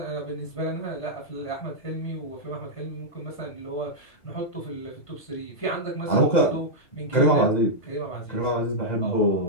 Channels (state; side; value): late; right; 2.0 ms